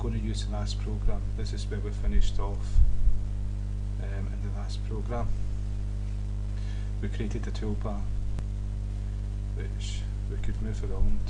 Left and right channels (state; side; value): identical; both; correlation 1.00